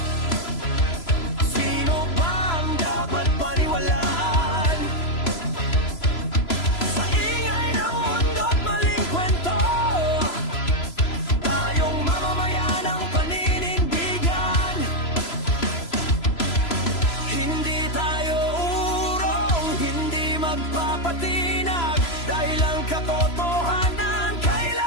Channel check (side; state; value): right; late; 3.0 ms